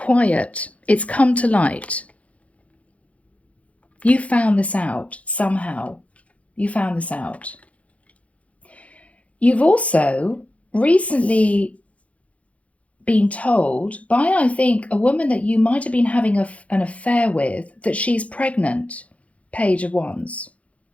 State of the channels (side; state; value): right; late; 0.065 ms